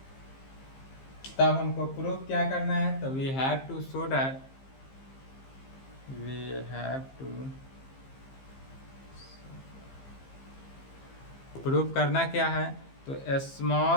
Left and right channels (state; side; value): late; right; 15 ms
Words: तब हमको प्रूफ क्या करना है, तो we have to show that, we have to proof करना क्या है, तो